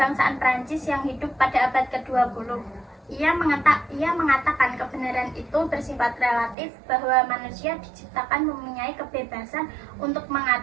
Prancis yang hidup pada abad ke-20. Ia mengatakan kebenaran itu bersifat relatif, bahwa manusia diciptakan mempunyai kebebasan untuk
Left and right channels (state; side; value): drops out; left; at 6.6 s